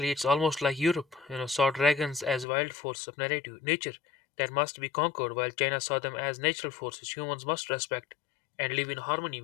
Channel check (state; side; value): drops out; right; at 2.5 s